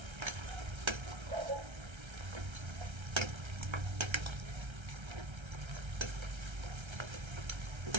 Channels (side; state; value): left; late; 1.3 ms